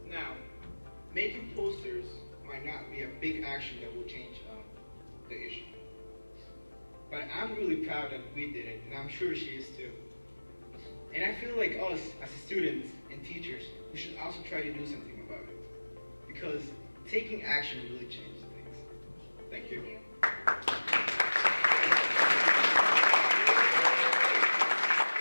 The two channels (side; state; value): both; inverted; correlation -1.00